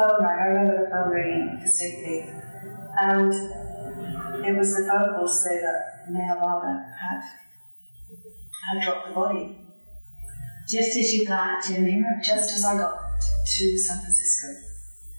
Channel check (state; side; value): inverted; both; correlation -1.00